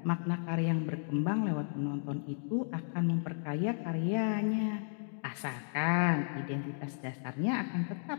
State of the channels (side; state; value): right; silent; digital silence